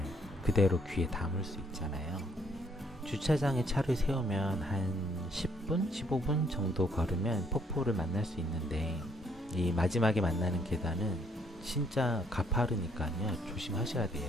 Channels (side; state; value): both; normal; correlation 0.67